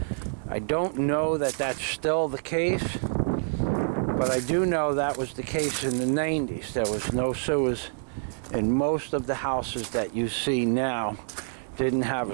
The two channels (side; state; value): left; silent; 57 dB below the other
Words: I don't know that that's still the case, but I do know that was the case in the 90s. There was no sewers in most of the houses that you see now. Didn't have